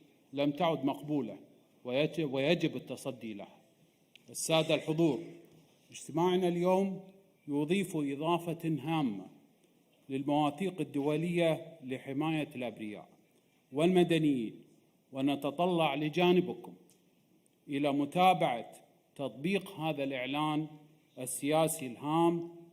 لم تعد مقبولة ويجب التصدي لها. السادة الحضور، اجتماعنا اليوم يضيف إضافة هامة للمواثيق الدولية لحماية الأبرياء والمدنيين، ونتطلع لجانبكم إلى متابعة تطبيق هذا الإعلان السياسي الهام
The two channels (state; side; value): identical; both; correlation 1.00